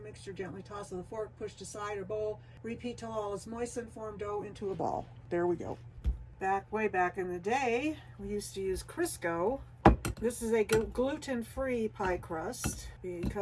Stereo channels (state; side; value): identical; both; correlation 1.00